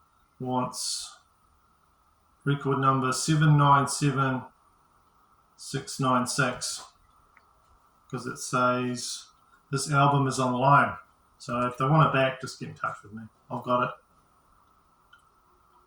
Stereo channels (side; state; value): both; identical; correlation 1.00